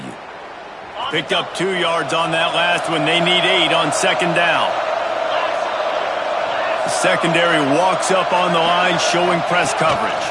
Picked up 2 yards on that last one. They need 8 on 2nd down. The secondary walks up on the line, showing press coverage.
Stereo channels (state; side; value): identical; both; correlation 1.00